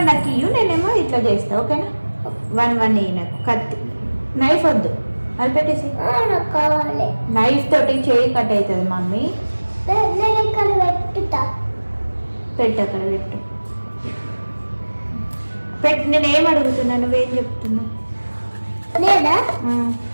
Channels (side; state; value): both; inverted; correlation -1.00